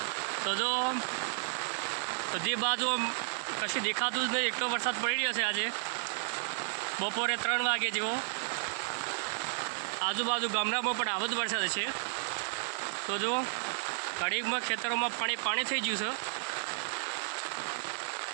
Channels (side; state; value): left; silent; digital silence